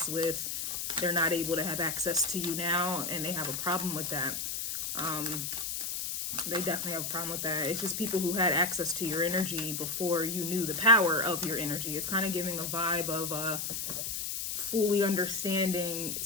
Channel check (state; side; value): noise; left; hiss, 3 dB below the sound